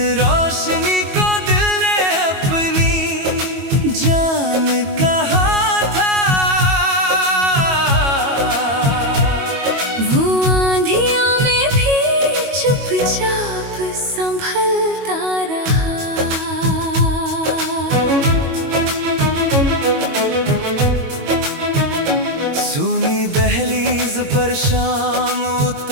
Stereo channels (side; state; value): left; late; 22 ms